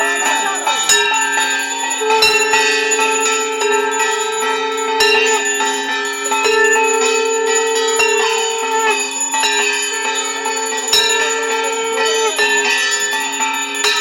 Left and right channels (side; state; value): both; identical; correlation 1.00